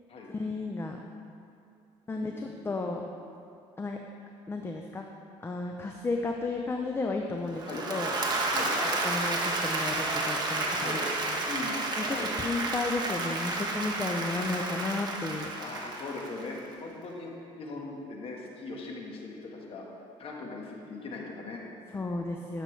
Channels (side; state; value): both; normal; correlation 0.39